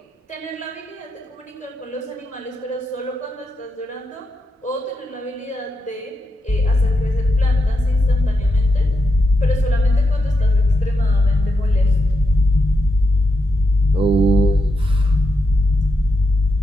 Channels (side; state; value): both; normal; correlation 0.84